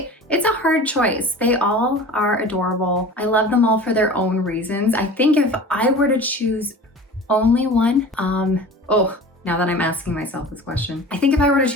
a hard choice. They all are adorable. I love them all for their own reasons. I think if I were to choose only one, now that I'm asking myself this question, I think if I were to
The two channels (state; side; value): normal; both; correlation 0.38